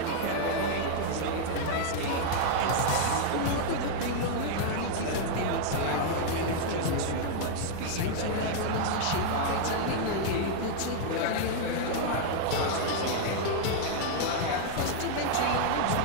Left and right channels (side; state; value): both; different; correlation -0.01